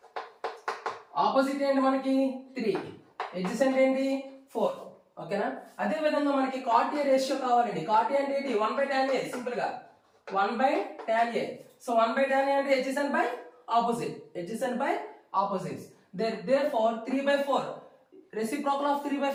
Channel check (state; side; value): identical; both; correlation 1.00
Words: Opposite ఏంటి మనకి 3, ఎడ్జసెంట్ ఏంటి 4. ఓకేనా? అదే విధంగా మనకి కాట్ ఏ రేషియో కావాలండి. కాట్ ఏ అంటే ఏంటి 1/tan ఏ, సింపుల్ గా 1/tan ఏ. సో 1/tan ఏ అంటే adjacent by opposite, adjacent by opposites. Therefore 3/4 reciprocal of